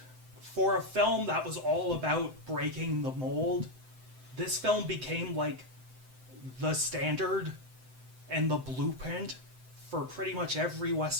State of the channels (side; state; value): left; late; 7.8 ms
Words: for a film that was all about breaking the mold, this film became like the standard and the blueprint for pretty much every